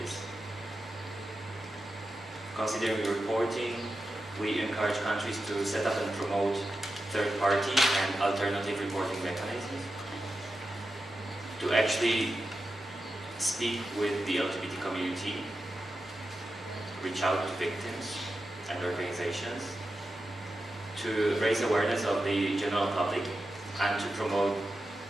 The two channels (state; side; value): normal; both; correlation 0.90